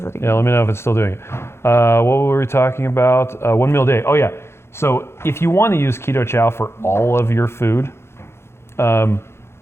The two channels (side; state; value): right; late; 0.12 ms